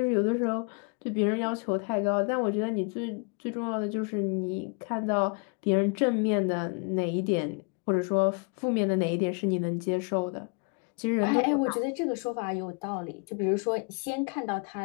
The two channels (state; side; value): quieter; right; 34.7 dB